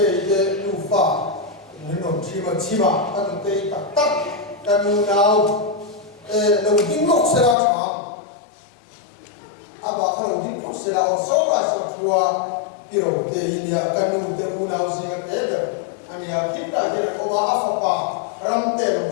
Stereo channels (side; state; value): right; drops out; at 7.6 s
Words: đủ pha nên nó chỉ mà các cái tắc tắc các nào đầu tiên lúc sẽ ra chọn à bà cái đầu tiên lúc sẽ ra ở sau là sẽ thua cái đầu tiên India các nụ tên nào gì cái đấy anh ya kita cái là ông áp phá ram tên đầu